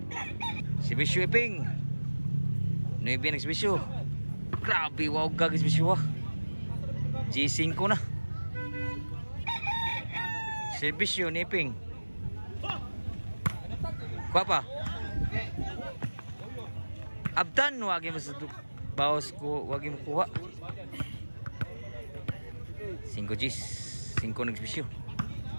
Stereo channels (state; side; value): inverted; both; correlation -1.00